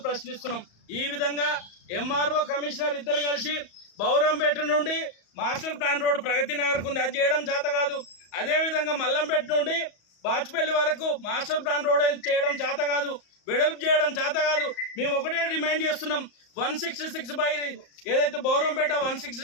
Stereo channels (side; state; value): right; late; 34 ms